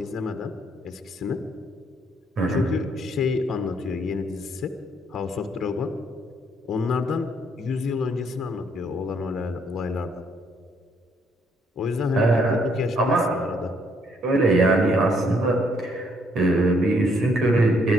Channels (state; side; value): normal; both; correlation 0.69